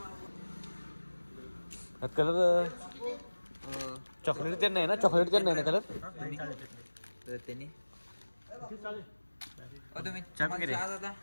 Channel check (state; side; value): inverted; both; correlation -1.00